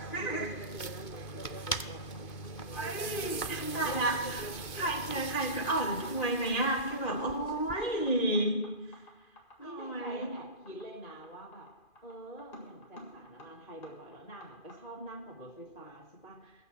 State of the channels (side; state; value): right; late; 2.4 ms